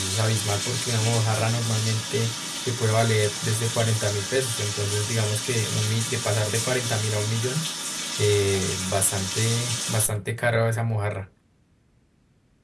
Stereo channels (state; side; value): identical; both; correlation 1.00